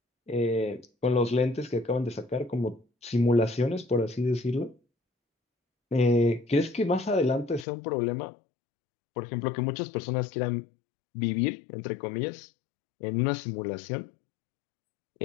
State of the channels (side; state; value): right; drops out; at 7.7 s